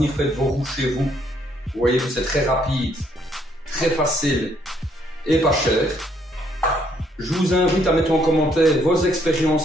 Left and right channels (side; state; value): both; normal; correlation 0.69